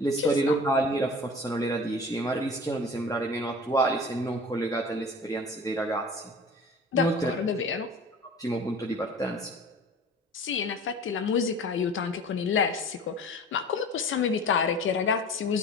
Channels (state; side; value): normal; both; correlation 0.40